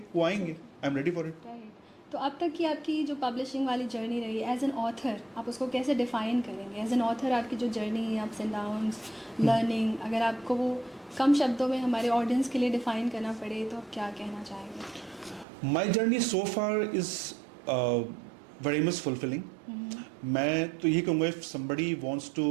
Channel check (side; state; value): left; drops out; at 15.5 s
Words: वो आएंगे, आई am ready for it. Right. तो अब तक की आपकी जो पब्लिशिंग वाली जर्नी रही एज एन ऑथर, आप उसको कैसे डिफाइन करेंगे? एज एन ऑथर आपकी जो जर्नी है, अप्स एंड डाउन्स, लर्निंग, अगर आपको वो कम शब्दों में हमारे ऑडियंस के लिए डिफाइन करना पड़े तो आप क्या कहना चाहेंगे? My journey so far is very much fulfilling. मैं तो यही कहूँगा, if somebody wants to